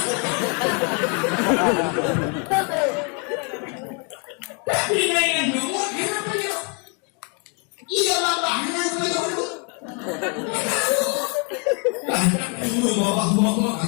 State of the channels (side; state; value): right; quieter; 36.3 dB